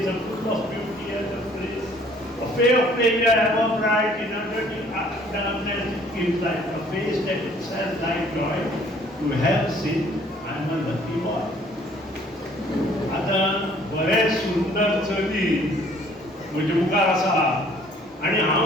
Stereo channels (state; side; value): normal; both; correlation 0.57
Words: a full of beauty and of grace a fair figure ever bright in a dirty darkness it gives light a face that itself like joy to have seen I'm a lucky boy आता बरेच सुंदर चली म्हणजे मुखार आसा आणि